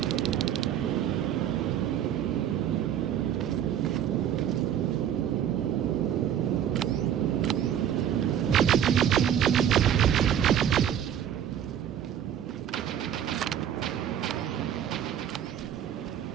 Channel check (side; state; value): left; quieter; 9.8 dB